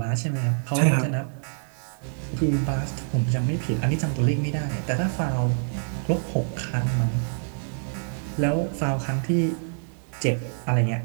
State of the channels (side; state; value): left; silent; 61 dB below the other